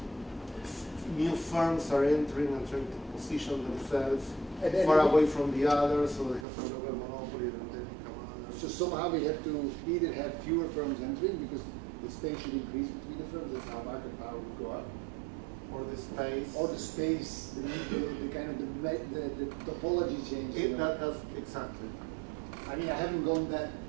new firms are entering and trying to position themselves far away from the others, so they have a local monopoly and then become others. So somehow we have to either have fewer firms entering because the space should increase between the firms, that's how market power would go up. Or the space. Or the space, the kind of the topology change. That's exactly. I mean, I haven't gone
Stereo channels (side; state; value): left; drops out; at 6.5 s